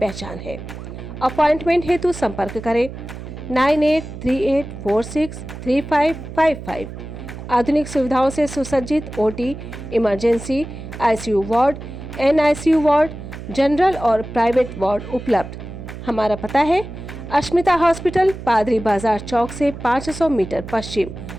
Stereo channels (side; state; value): right; noise; hum, 11 dB below the sound